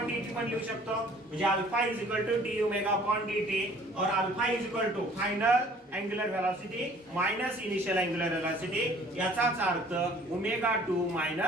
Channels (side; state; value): both; normal; correlation 0.54